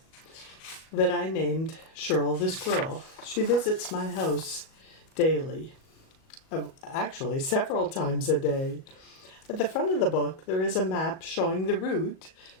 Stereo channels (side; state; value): right; late; 37 ms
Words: that I named Shirl the Squirrel. She visits my house daily. Actually, several times a day. At the front of the book, there is a map showing the route